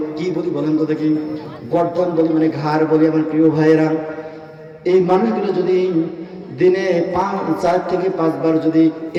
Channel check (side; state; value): both; identical; correlation 1.00